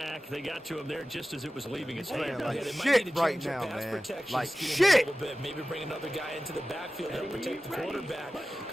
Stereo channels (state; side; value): normal; both; correlation 0.96